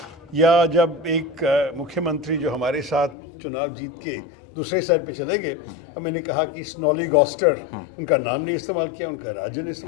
या जब एक मुख्यमंत्री जो हमारे साथ चुनाव जीत के दूसरे साइड पे चले गए, और मैंने कहा कि स्नॉली गॉस्टर, उनका नाम नहीं इस्तेमाल किया, उनका राज्य ने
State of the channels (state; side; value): drops out; right; at 3.2 s